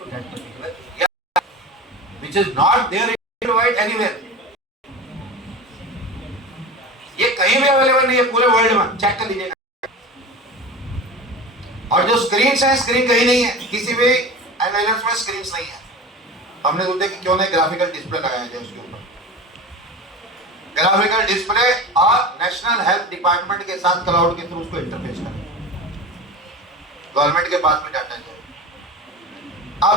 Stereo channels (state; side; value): normal; both; correlation 0.32